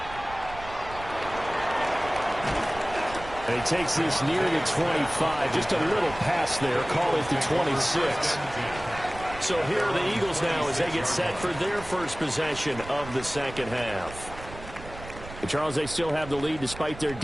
And he takes this near the 25. Just a little pass there. Call it the 26. So here are the Eagles now as they get set for their first possession of the second half. And Charles, they still have the lead despite their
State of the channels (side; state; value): right; noise; rumble, 15 dB below the sound